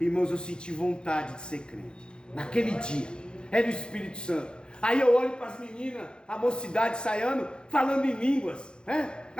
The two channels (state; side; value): late; right; 0.050 ms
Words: eu senti vontade de ser crente, naquele dia, era o Espírito Santo. Aí eu olho para as meninas, a mocidade saindo, falando em línguas, né?